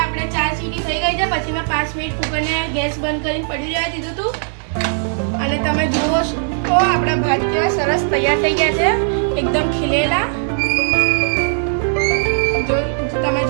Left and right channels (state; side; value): silent; left; 66 dB below the other